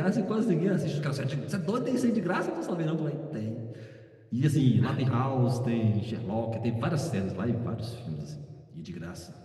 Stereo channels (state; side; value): identical; both; correlation 1.00